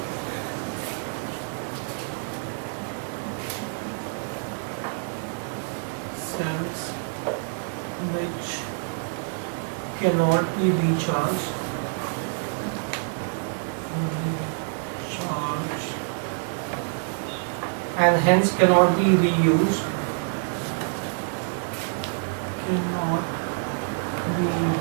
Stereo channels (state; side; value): silent; left; 60 dB below the other